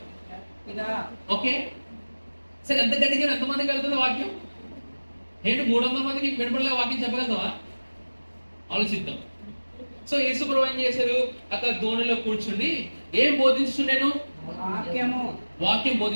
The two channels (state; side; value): inverted; both; correlation -1.00